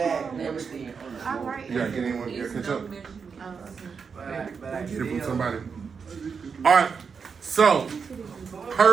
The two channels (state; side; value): quieter; left; 5.8 dB